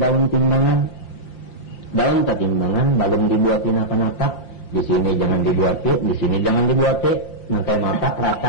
timbangan belum dibuatin apa-apa di sini jangan dibuati di sini jangan dibuati nang kayak mata rasa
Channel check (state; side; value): late; right; 5.8 ms